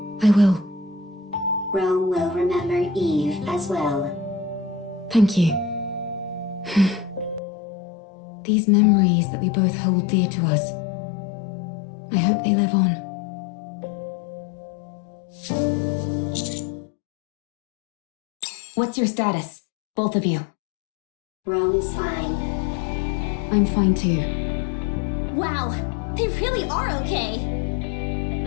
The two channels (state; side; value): drops out; right; at 7.4 s